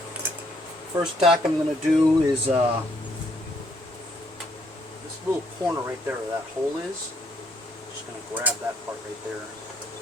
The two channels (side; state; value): both; normal; correlation 0.69